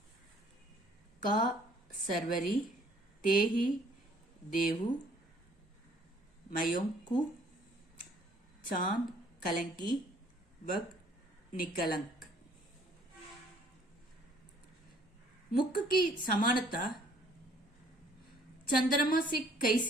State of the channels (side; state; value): both; normal; correlation 0.60